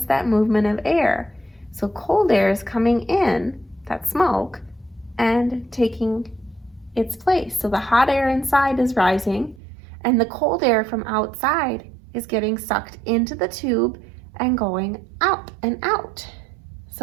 that movement of air. So cold air is coming in, that smoke, and taking its place. So the hot air inside is rising, and the cold air from outside is getting sucked into the tube and going up and out.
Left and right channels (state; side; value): drops out; left; at 9.6 s